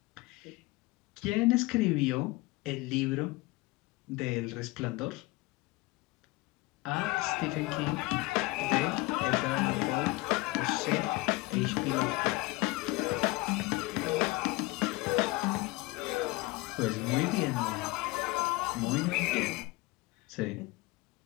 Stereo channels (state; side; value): quieter; right; 21.5 dB